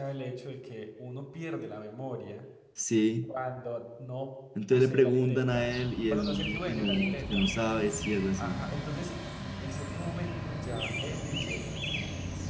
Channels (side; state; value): both; identical; correlation 1.00